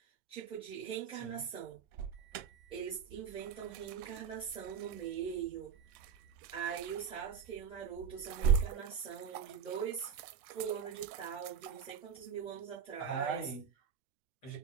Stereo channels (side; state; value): left; quieter; 7.3 dB